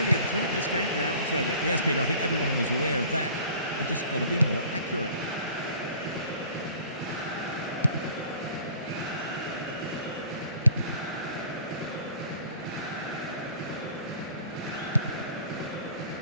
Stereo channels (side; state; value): both; inverted; correlation -0.48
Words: have turned this game round, Trevor. Yes, Peter, I think everyone was aware of that. It just got to be more accurate.